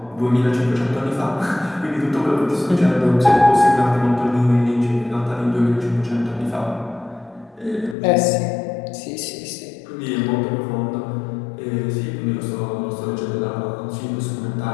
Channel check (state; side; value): drops out; right; at 8.0 s